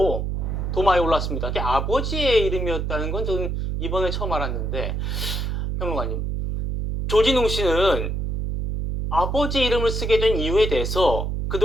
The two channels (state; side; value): noise; right; hum, 2 dB below the sound